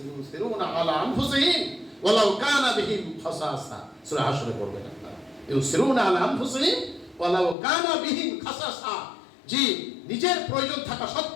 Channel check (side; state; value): right; drops out; at 7.6 s